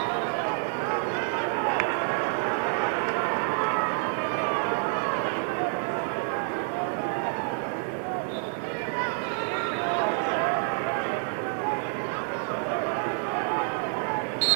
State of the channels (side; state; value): left; silent; 56 dB below the other